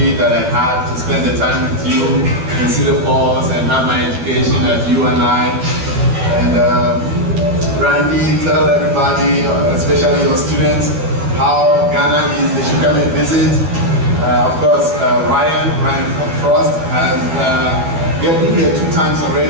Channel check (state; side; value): late; left; 12 ms